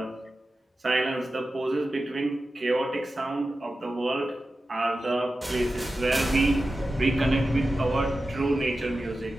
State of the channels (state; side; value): normal; both; correlation 0.93